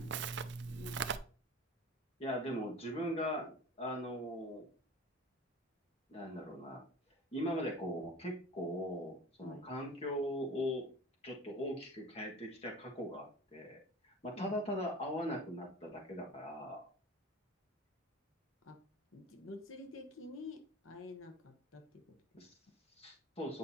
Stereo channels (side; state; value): both; normal; correlation 0.39